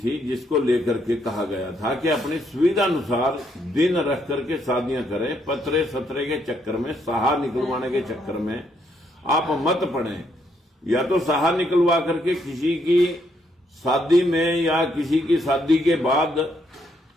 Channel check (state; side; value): normal; both; correlation 0.73